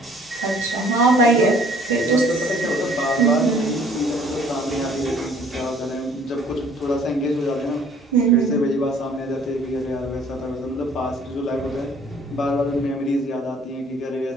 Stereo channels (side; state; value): both; normal; correlation 0.56